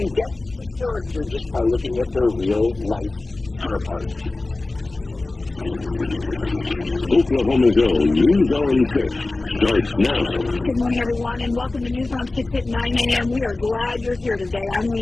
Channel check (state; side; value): quieter; right; 3.1 dB